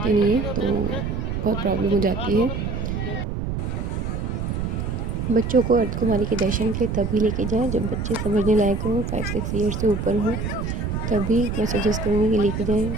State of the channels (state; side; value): noise; right; rumble, 3 dB below the sound